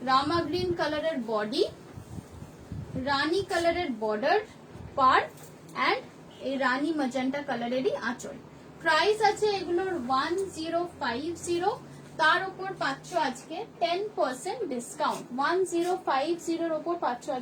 রামা গ্রিন কালারের বডি, রানী কালারের বর্ডার পার, এন্ড এই রানী ম্যাজেন্টা কালারেরই আঁচল। প্রাইস আছে এগুলোর 1050, তার উপর পাচ্ছ আজকে 10% ডিসকাউন্ট। 1050 এর উপর পাচ্ছ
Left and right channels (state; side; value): identical; both; correlation 1.00